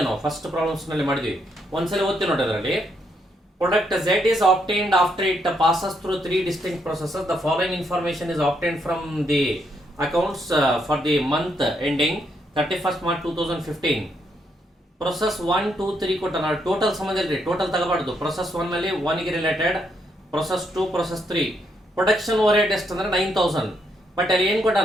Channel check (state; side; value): normal; both; correlation 0.76